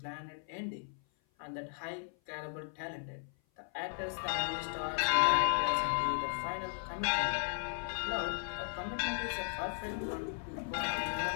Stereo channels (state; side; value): silent; right; 54 dB below the other